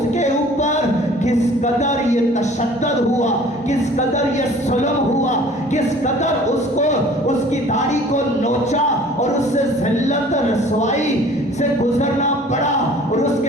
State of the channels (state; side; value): normal; both; correlation 0.49